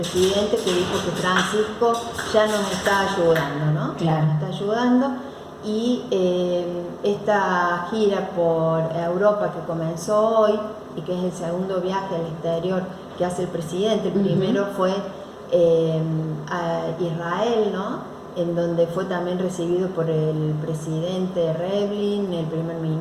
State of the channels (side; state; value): both; identical; correlation 1.00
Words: que dijo que Francisco ya nos está ayudando, ¿no? Claro. Nos está ayudando, y esta gira por Europa que comenzó hoy y que es el segundo viaje al exterior que hace el presidente, el primero fue a Israel, ¿no?, en donde fue también recibido por el presidente Rivlin, el primer